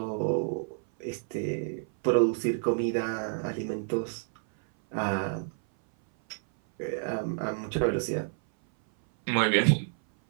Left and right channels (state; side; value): silent; left; 58 dB below the other